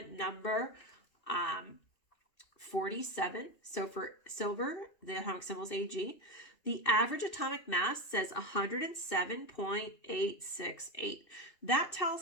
number 47. So for silver, the atomic symbol is Ag. The average atomic mass says 107.868. That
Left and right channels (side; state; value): right; late; 2.6 ms